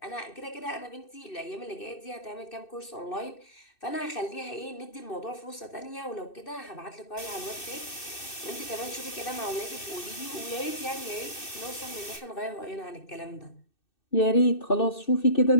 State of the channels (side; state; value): right; late; 2.6 ms